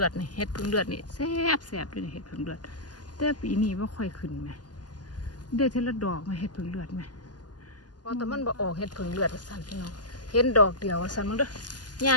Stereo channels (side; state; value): right; late; 0.70 ms